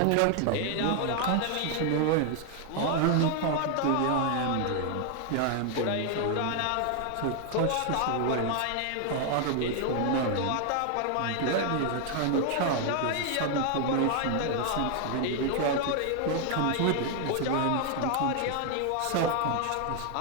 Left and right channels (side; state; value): both; different; correlation 0.00